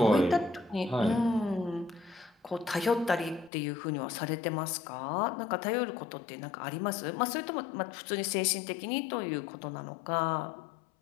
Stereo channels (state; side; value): drops out; right; at 3.5 s